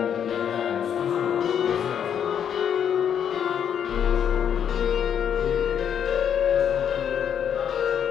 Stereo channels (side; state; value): right; quieter; 8.6 dB